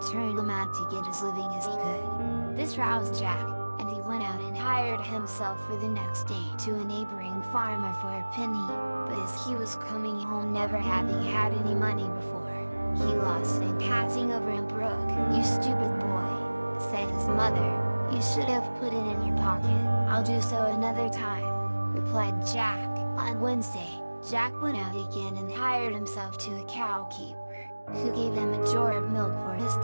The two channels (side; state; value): both; inverted; correlation -1.00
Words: turn him out to get as living as he could. This roused Jack, and he went out and hired himself for the next day to a neighboring farmer for a penny. But as he was coming home, never having had any money before, he lost it passing over a brook. "You stupid boy," said his mother, "you should have put it in your pocket." "I'll do so another time," replied Jack. On Wednesday, Jack went out again and hired himself to a cow keeper, who gave him a jar of milk for his